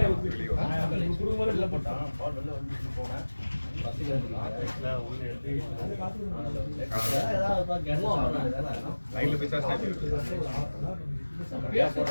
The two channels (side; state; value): both; inverted; correlation -1.00